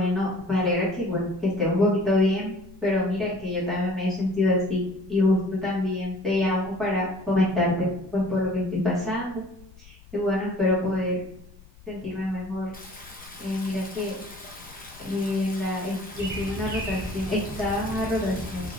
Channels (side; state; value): left; noise; rumble, 22 dB below the sound